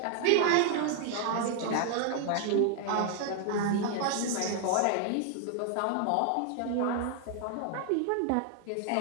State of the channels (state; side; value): different; both; correlation 0.00